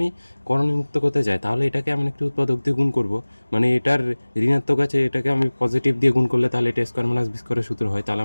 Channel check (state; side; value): inverted; both; correlation -1.00